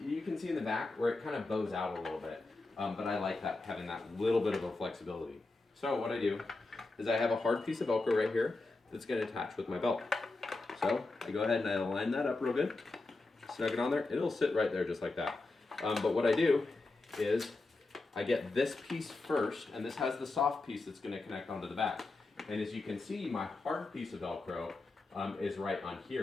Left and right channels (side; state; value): right; quieter; 3.3 dB